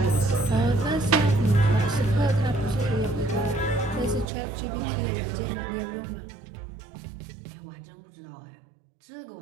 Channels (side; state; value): left; drops out; at 4.2 s